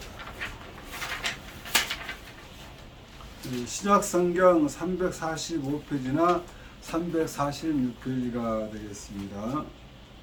신약성경 345페이지나 346페이지가 되겠습니다.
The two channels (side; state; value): both; identical; correlation 1.00